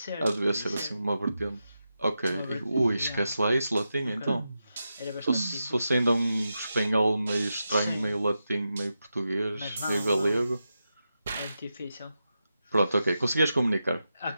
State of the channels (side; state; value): both; inverted; correlation -0.89